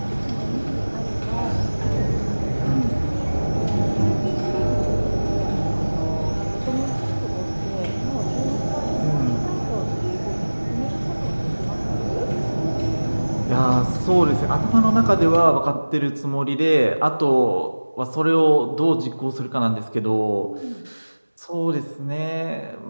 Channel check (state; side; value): inverted; both; correlation -1.00